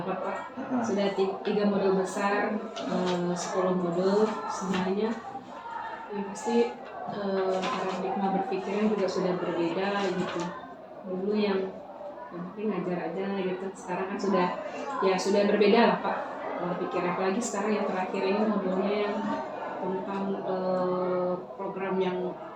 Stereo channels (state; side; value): identical; both; correlation 1.00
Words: Pak. Sudah 3 modul besar, 10 modul semuanya. Yang pasti paradigma berpikirnya juga sudah berbeda gitu. Dulu yang penting ngajar aja gitu, sekarang kan sudah berbeda lah Pak pola pikir. Apalagi sekarang yang terakhir ini modulnya yang tentang program yang